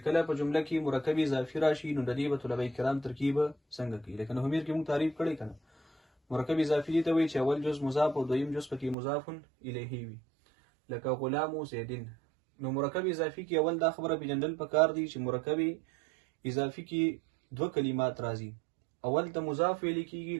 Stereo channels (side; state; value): left; drops out; at 9.0 s